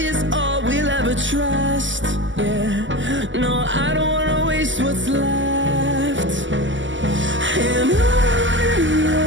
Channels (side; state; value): left; late; 0.55 ms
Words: is all we'll ever trust. Yeah, no, I don't wanna waste what's left. And on